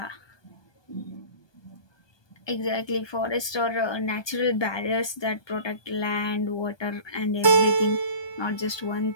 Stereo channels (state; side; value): late; right; 1.2 ms